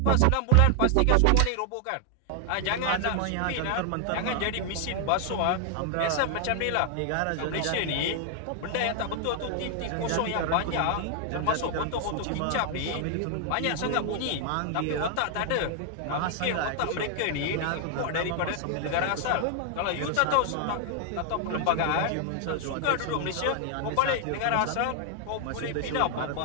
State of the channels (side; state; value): both; different; correlation 0.00